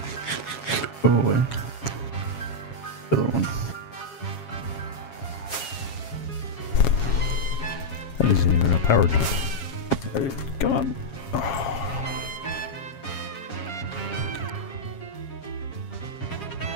Go away. The other one. That isn't even a power jump. Alright, come on. Oh.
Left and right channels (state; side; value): late; right; 7.3 ms